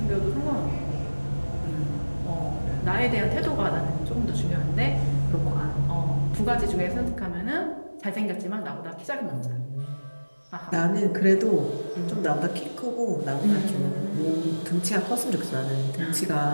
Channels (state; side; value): inverted; both; correlation -1.00